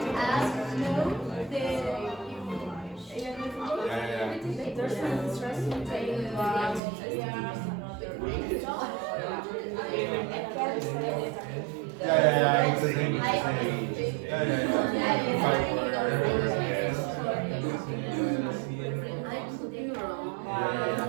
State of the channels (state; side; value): drops out; left; at 6.8 s